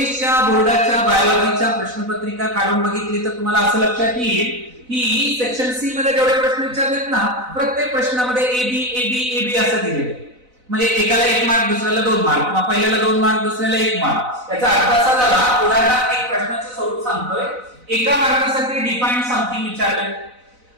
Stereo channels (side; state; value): left; late; 4.0 ms